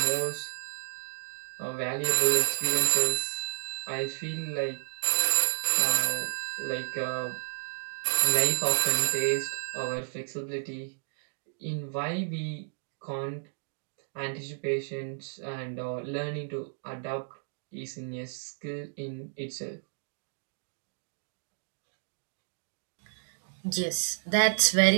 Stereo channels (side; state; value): left; silent; digital silence